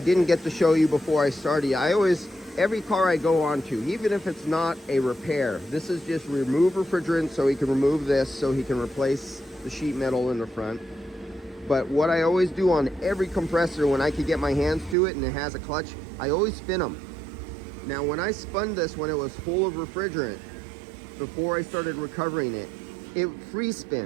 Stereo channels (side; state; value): left; drops out; at 15.0 s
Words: get to show you before I started, every car I go on to, even if it's not a repair, this is just remove refrigerant, so he can remove this, so he can replace the sheet metal in the front. But what I always do on every compressor when I can get my hands to it and it has a clutch, I always spin them. Now, when I spun this when it was full of refrigerant, before I started recovering it, it free